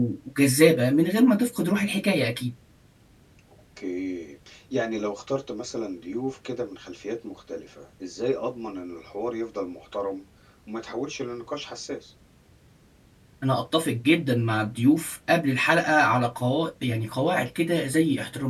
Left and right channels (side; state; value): both; identical; correlation 1.00